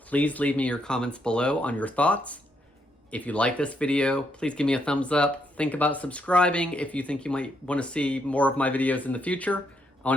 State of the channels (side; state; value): both; normal; correlation 0.76